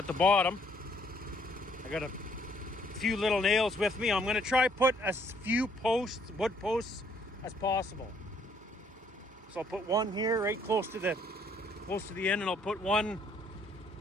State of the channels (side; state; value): both; normal; correlation 0.65